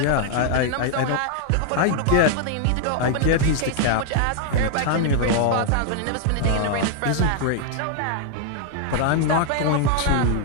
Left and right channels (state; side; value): different; both; correlation 0.00